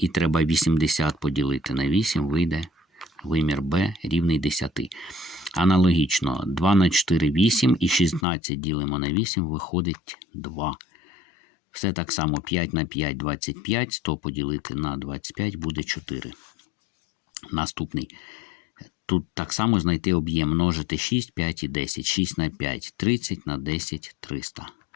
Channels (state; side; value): drops out; right; at 8.2 s